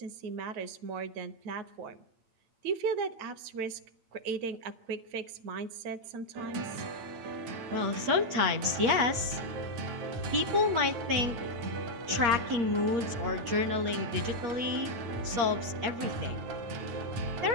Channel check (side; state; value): left; late; 8.4 ms